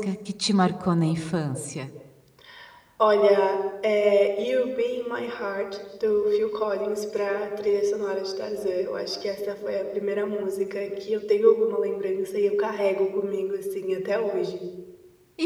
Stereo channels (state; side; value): identical; both; correlation 1.00